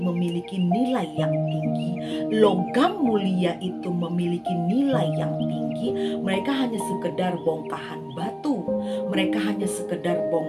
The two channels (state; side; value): identical; both; correlation 1.00